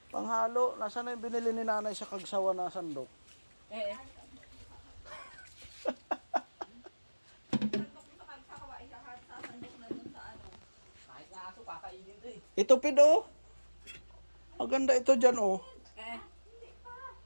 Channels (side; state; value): both; inverted; correlation -1.00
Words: Panghalo. Nasaan na yung binili ni nanay sa Kagsawa na sandok? Eh. Kahit nga aso, kakainin to eh. Ito pid oh. Maganda ito dyan oh. Eh.